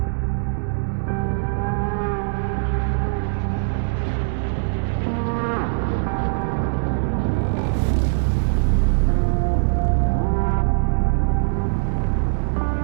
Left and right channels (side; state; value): left; silent; digital silence